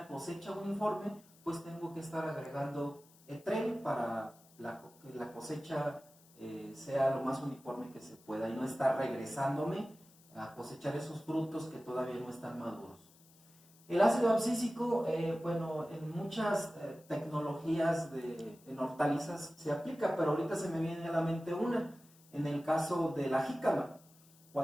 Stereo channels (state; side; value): noise; left; hiss, 27 dB below the sound